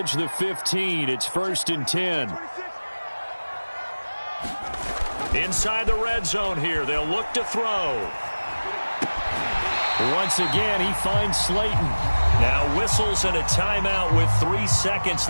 the 15. It's 1st and 10. Inside the red zone here. They'll look to throw. Once again, he finds Slayton. Now whistles and a timeout with 3 seconds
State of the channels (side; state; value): both; inverted; correlation -1.00